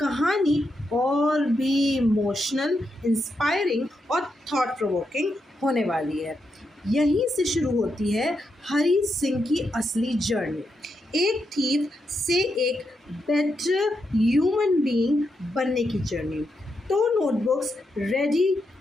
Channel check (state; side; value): normal; both; correlation 0.83